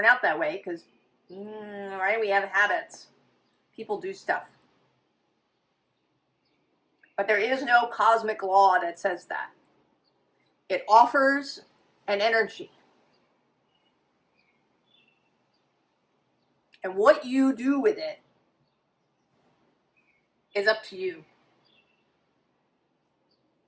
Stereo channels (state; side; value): identical; both; correlation 1.00